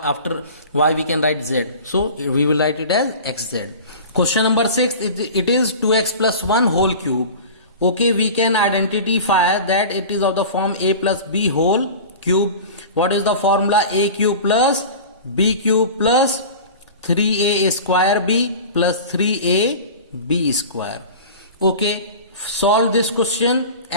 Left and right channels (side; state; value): both; inverted; correlation -0.36